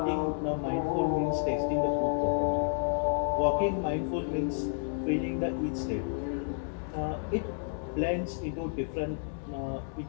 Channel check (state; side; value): silent; right; 57 dB below the other